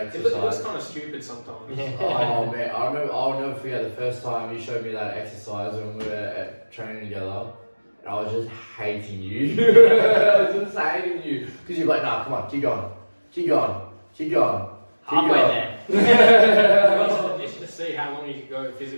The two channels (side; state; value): both; inverted; correlation -1.00